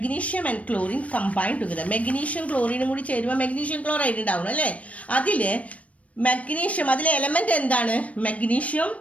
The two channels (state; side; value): late; right; 0.066 ms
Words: and chlorine combine together. Magnesium ക്ലോറിനും കൂടി ചേരുമ്പോൾ മെഗ്നീഷ്യം ക്ലോറൈഡ് ഉണ്ടാവണം അല്ലേ? അതിൽ മഗ്നീഷ്യം, അതിലെ എലമെൻ്റ് എന്താണ്? മഗ്നീഷ്യം